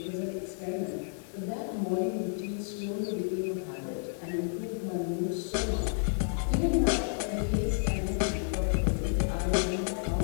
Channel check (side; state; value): right; silent; 57 dB below the other